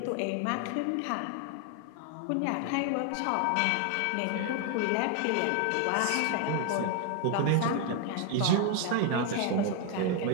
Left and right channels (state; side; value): different; both; correlation 0.01